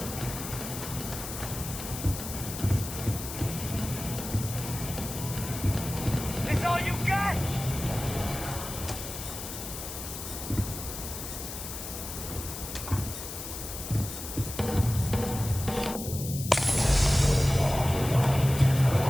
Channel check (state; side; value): noise; left; hiss, 8 dB below the sound